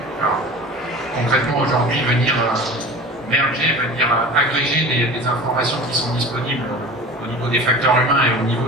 alors, concrètement, aujourd'hui, venir merger, venir agréger des informations qui sont disponibles au niveau des facteurs humains et au niveau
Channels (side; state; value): both; normal; correlation 0.36